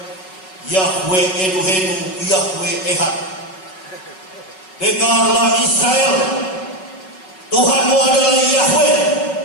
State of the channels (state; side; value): late; right; 5.4 ms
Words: Yahweh Elohenu, Yahweh Ehad. Dengarlah Israel, Tuhanmu adalah Yahweh